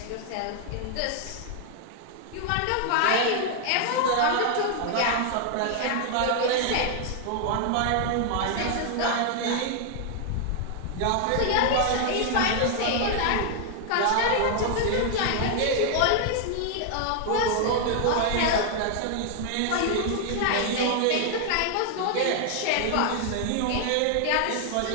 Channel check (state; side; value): different; both; correlation 0.00